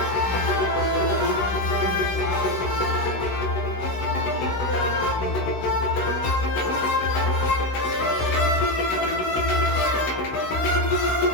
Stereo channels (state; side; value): late; right; 16 ms